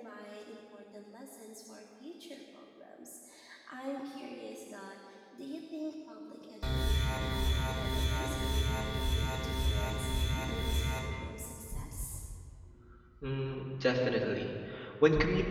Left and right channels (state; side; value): identical; both; correlation 1.00